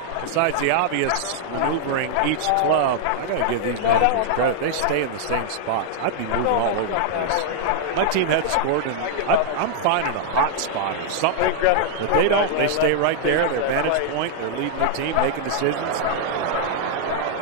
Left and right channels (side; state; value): both; different; correlation 0.00